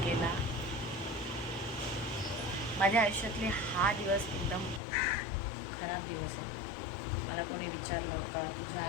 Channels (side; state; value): right; drops out; at 4.8 s